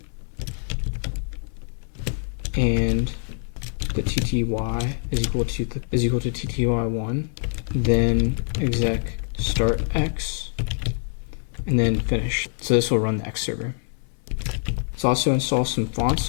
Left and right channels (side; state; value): right; silent; 58 dB below the other